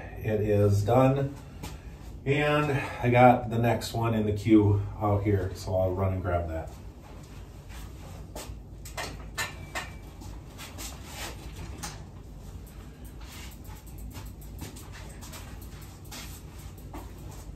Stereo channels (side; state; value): both; identical; correlation 1.00